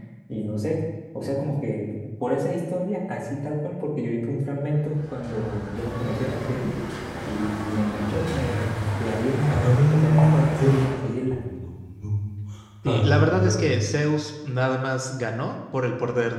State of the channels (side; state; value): both; identical; correlation 1.00